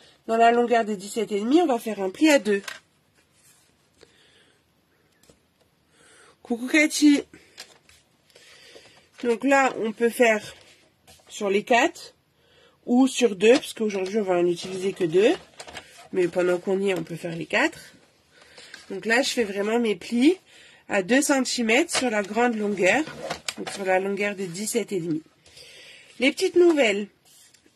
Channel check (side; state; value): both; identical; correlation 1.00